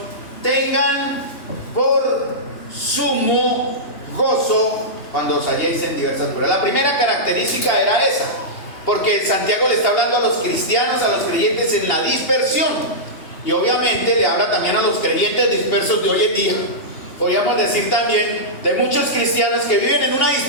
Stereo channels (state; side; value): late; right; 3.2 ms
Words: tengan por sumo gozo cuando os halléis en diversas pruebas. La primera característica era esa, porque Santiago le está hablando a los cristianos, a los creyentes en la dispersión. Y obviamente le habla también a los creyentes dispersos de hoy en día. Podríamos decir también de muchos cristianos que viven en una